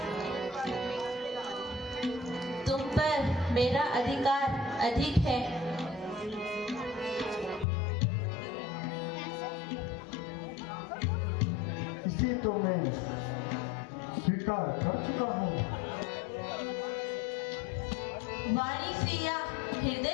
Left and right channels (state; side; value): drops out; right; at 7.7 s